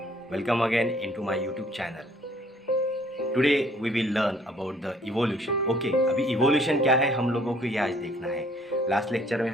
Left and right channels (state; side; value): normal; both; correlation 0.60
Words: welcome again into my YouTube channel. Today we will learn about the evolution. Okay, अभी evolution क्या है हम लोगों को ये आज देखना है। लास्ट लेक्चर में